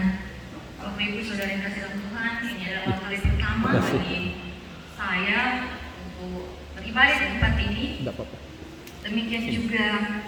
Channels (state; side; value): identical; both; correlation 1.00